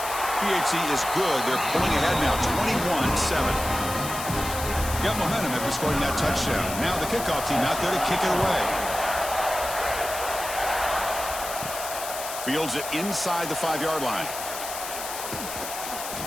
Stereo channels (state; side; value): noise; left; hiss, 8 dB below the sound